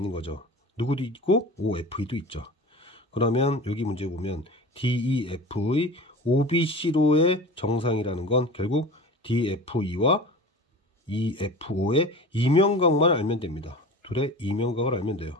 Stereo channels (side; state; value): both; normal; correlation 0.35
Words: 거죠. 누구도 있고 OFE도 있죠. 그러면 여기 문제 보면 DEF의 OBC로의 정상이라는 건 결국 DFE와 EFO의 이면각만 알면 됩니다. 둘의 이면각을 알면